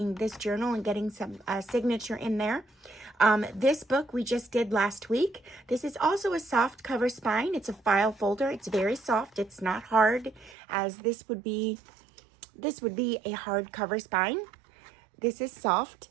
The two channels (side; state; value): left; drops out; at 10.6 s